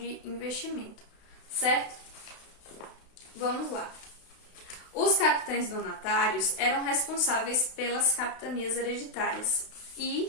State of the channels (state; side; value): late; right; 32 ms